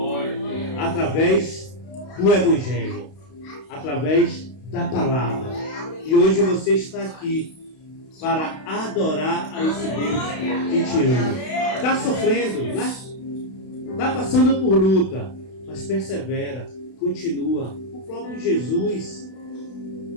através do Evangelho, através da palavra. E hoje você está aqui para adorar a esse Deus que te ama. Está sofrendo, né? Está passando por luta, mas persevera, continua. O próprio Jesus.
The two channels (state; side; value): late; right; 32 ms